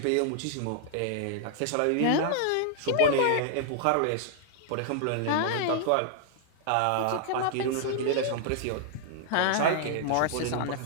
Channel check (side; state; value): both; different; correlation -0.01